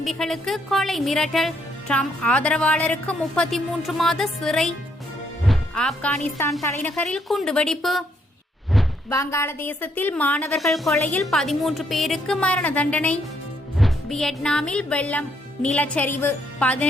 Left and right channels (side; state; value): both; normal; correlation 0.72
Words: கொலை மிரட்டல். ட்ரம்ப் ஆதரவாளருக்கு 33 மாத சிறை. ஆப்கானிஸ்தான் தலைநகரில் குண்டுவெடிப்பு. வங்காளதேசத்தில் மாணவர்கள் கொலையில் 13 பேருக்கு மரண தண்டனை. வியட்நாமில் வெள்ளம், நிலச்சரிவு,